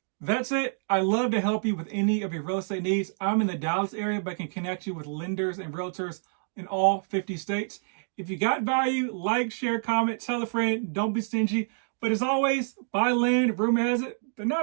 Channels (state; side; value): silent; left; digital silence